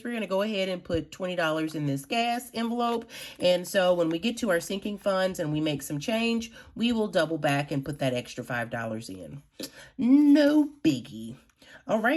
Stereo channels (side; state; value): both; identical; correlation 1.00